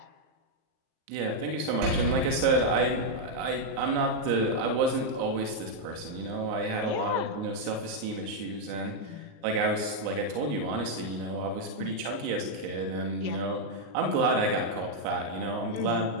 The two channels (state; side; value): late; left; 38 ms